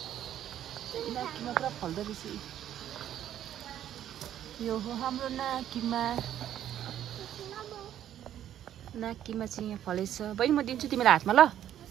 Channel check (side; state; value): left; quieter; 11.1 dB